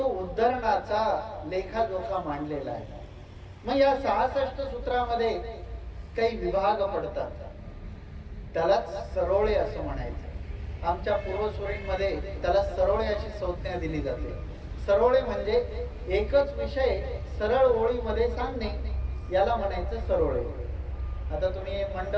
उद्धरणाचा लेखाजोखा मांडलेला आहे. मग या 66 सूत्रामध्ये काही विभाग पडतात, त्यालाच सरोळे असं म्हणायचं. आमच्या पूर्वसुरींमध्ये त्याला सरोळे अशी संज्ञा दिली जाते. सरोळे म्हणजे एकच विषय सरळ ओळीमध्ये सांगणे, याला म्हणायचं सरोळे. आता तुम्ही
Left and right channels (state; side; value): identical; both; correlation 1.00